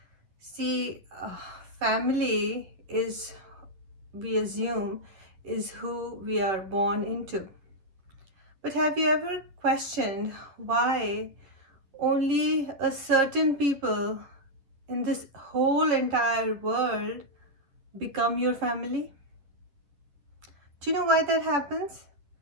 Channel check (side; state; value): left; late; 10 ms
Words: See, family is, we assume, is who we are born into. But have you ever questioned why only a certain people in this whole entire world become your family? Do you know why that happens?